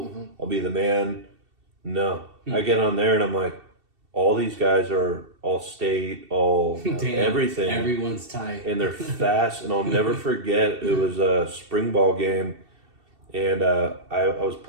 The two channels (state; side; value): late; left; 2.7 ms